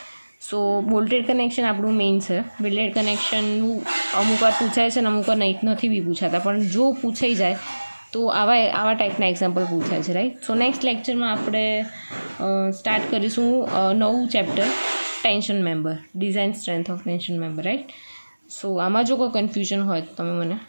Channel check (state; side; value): inverted; both; correlation -1.00